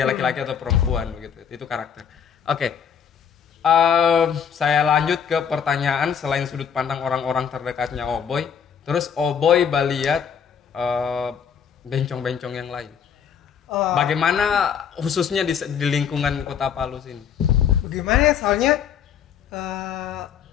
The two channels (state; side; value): quieter; right; 7.7 dB